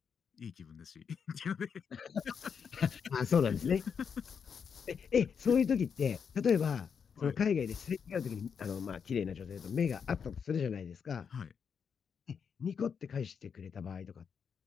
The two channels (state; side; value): quieter; right; 6.7 dB